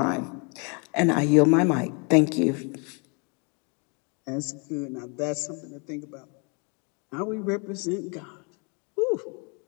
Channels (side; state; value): right; quieter; 34.8 dB